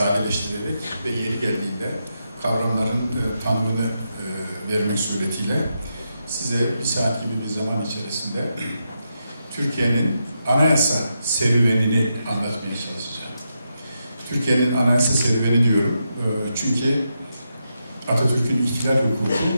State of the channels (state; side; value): inverted; both; correlation -0.85